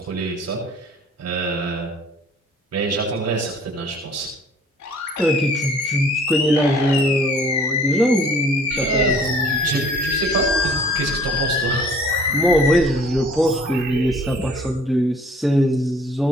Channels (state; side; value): normal; both; correlation 0.54